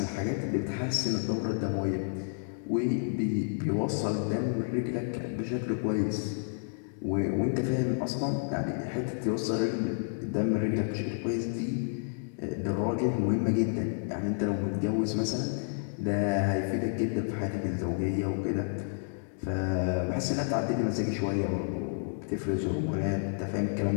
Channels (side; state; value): right; silent; digital silence